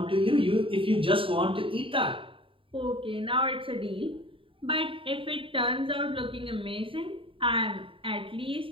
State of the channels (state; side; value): late; left; 0.25 ms